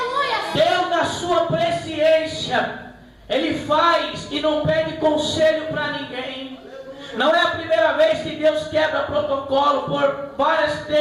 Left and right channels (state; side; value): identical; both; correlation 1.00